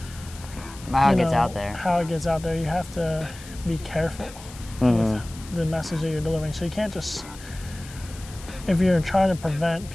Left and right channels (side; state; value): left; noise; hiss, 18 dB below the sound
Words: how it gets out there. How it gets out there, you have to be careful with the message that you're delivering. So you can't just, if you're trying to prevent